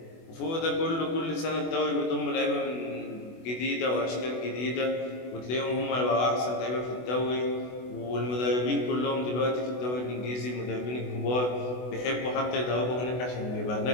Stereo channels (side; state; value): right; late; 24 ms